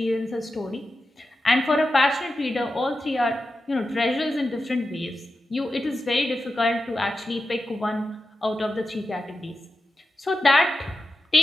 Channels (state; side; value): normal; both; correlation 0.91